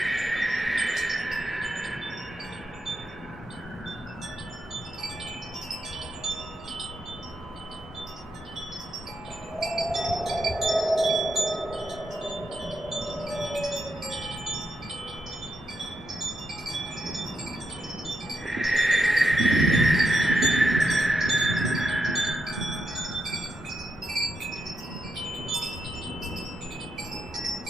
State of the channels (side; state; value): both; normal; correlation 0.84